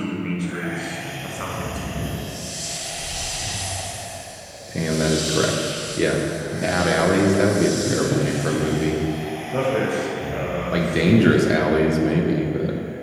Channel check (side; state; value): both; identical; correlation 1.00